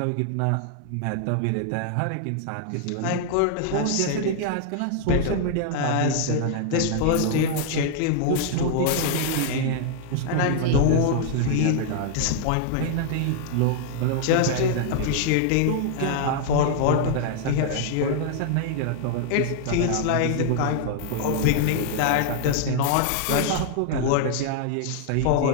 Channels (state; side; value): different; both; correlation 0.00